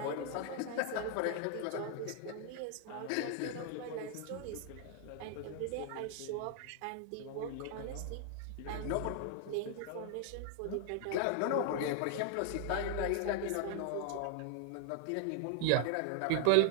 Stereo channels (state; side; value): different; both; correlation 0.00